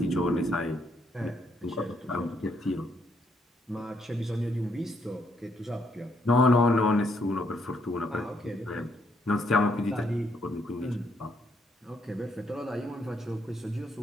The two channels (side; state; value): both; normal; correlation 0.74